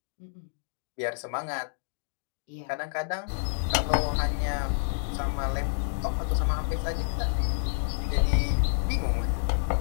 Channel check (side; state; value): right; silent; digital silence